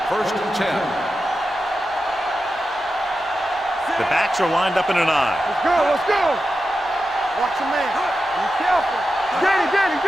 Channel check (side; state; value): both; normal; correlation 0.90